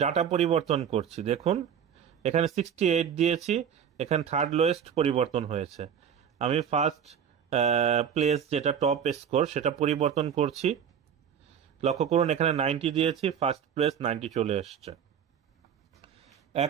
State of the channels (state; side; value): quieter; left; 8.2 dB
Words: ডাটা পরিবর্তন করছি। দেখুন এখানে 68 দিয়েছি, এখানে থার্ড লোয়েস্ট পরিবর্তন হয়েছে। আমি ফার্স্ট প্লেস যেটা টপ স্কোর সেটা পরিবর্তন করছি। লক্ষ্য করুন এখানে 90 দিয়েছি, ফার্স্ট প্লেস 90 চলে এসছে।